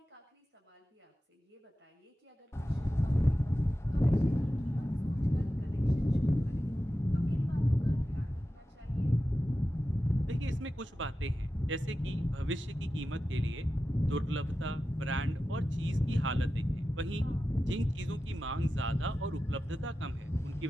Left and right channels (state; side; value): normal; both; correlation 0.93